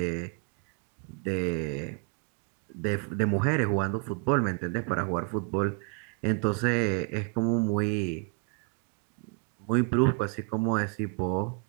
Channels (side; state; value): left; quieter; 36.6 dB